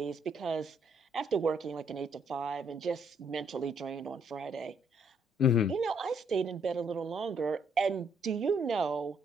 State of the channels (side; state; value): both; normal; correlation 0.70